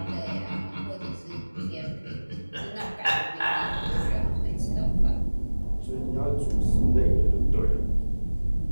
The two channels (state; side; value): inverted; both; correlation -1.00